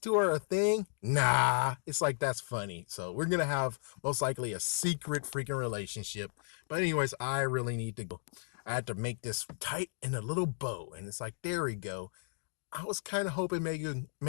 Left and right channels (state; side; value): silent; right; digital silence